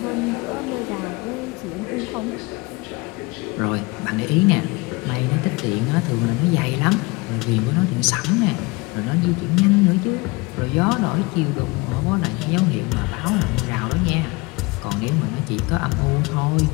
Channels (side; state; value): right; quieter; 25.1 dB